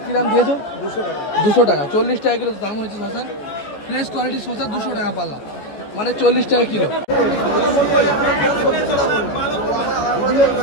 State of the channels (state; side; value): late; right; 14 ms